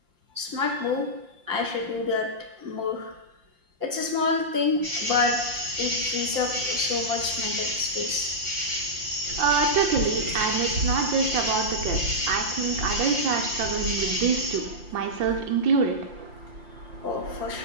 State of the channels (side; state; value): left; late; 5.7 ms